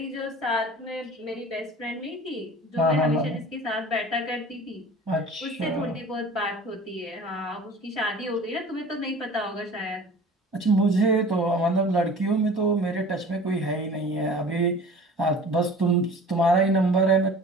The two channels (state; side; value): normal; both; correlation 0.43